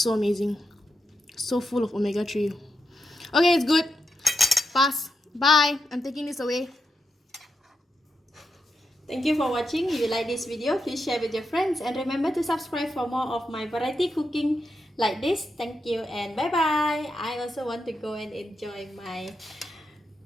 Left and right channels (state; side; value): normal; both; correlation 0.86